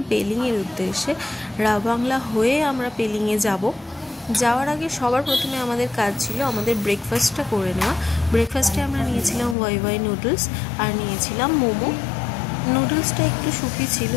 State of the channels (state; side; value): drops out; right; at 9.6 s